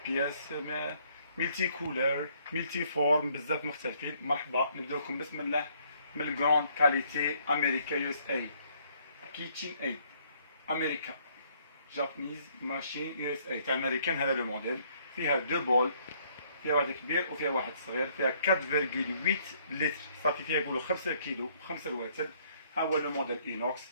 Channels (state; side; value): inverted; both; correlation -0.66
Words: بياس ميلتي كولور، ميلتي فورم، بزاف مختلفين. مرحبا، نبداو لكم بسم الله من الكروند كاليتي امريكا يو اس اي كيتشين ايد امريكا جابانيز ماشين يو اس اي تاع امريكان. هذا لو موديل فيها دو بول، فيها واحد كبير وفيها واحد صغير، فيها 4.8 لتر، صافي فيها يقولوا 5 كيلو 5 رواتب. ها هو لو موديل اينوكس،